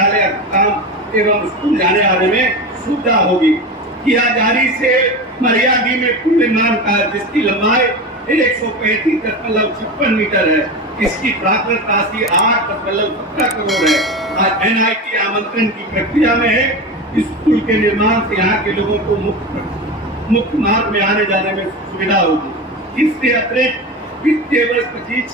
अस्पताल एवं स्कूल जाने आने में सुविधा होगी। किया जारी से मरियाडी में पुल निर्माण कार्य जिसकी लंबाई 135.56 मीटर है, इसकी प्राकृतिक राशि 8.17 करोड़ है और NIT आमंत्रण की प्रक्रिया में है। इस पुल के निर्माण से यहाँ के लोगों को मुख्य मार्ग में आने जाने में सुविधा होगी। इससे अतिरिक्त वित्तीय वर्ष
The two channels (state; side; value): normal; both; correlation 0.25